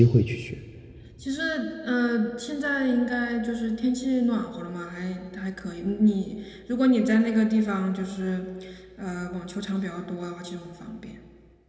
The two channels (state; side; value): identical; both; correlation 1.00